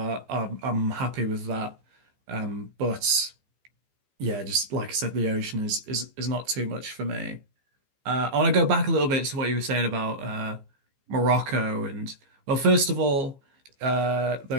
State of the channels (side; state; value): left; late; 15 ms